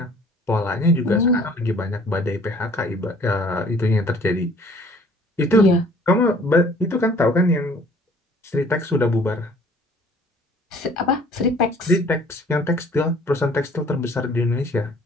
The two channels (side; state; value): both; normal; correlation 0.55